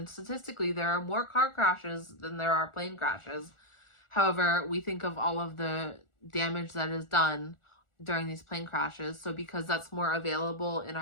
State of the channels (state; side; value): late; right; 1.4 ms